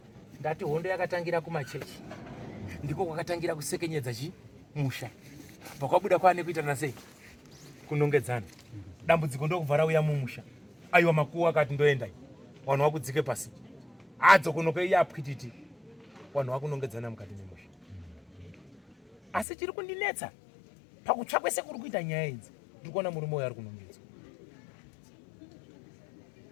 ndati hondo yakatangira kumachechi ndiko kwakatangira kusekenyedza musha pakwabuda kwaane kuitana sei kunongedzana dambudziko ndokubva rauya mumusha aiwa makuwa akati ndoendai vanhu vakudzike pasi adzo kunokeiya apwititi vanhu vakunongedzana mukati memusha asi chiri kundinetsa pakutsvakwe sekuri kuita nyaya idzi ndiri kuona murume uyo ari kunongedzwa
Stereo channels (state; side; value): drops out; right; at 19.5 s